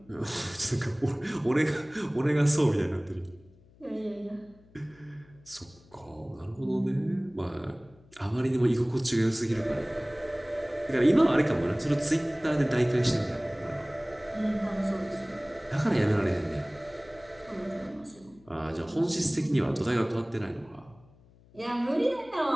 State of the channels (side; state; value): left; noise; hum, 27 dB below the sound